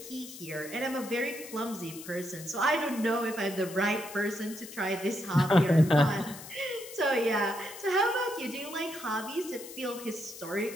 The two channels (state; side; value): noise; left; hiss, 14 dB below the sound